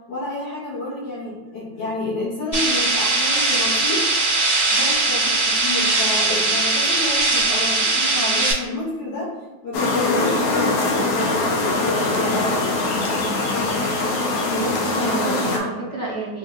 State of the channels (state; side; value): late; right; 9.2 ms